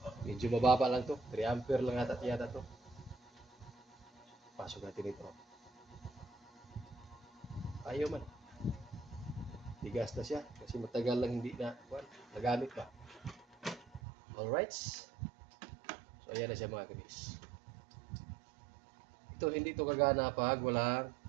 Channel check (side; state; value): left; drops out; at 14.0 s